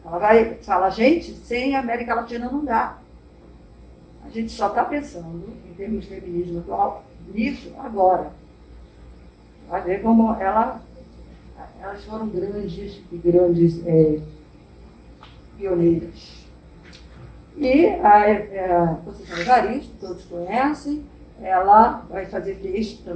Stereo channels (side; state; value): both; identical; correlation 1.00